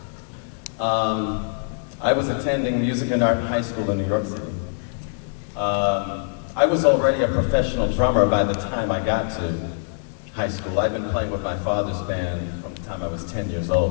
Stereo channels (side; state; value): right; silent; digital silence